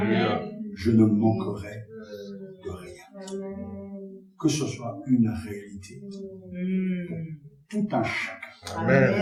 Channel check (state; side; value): identical; both; correlation 1.00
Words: Je ne manquerai de rien. Que ce soit une réalité pour tout un chacun,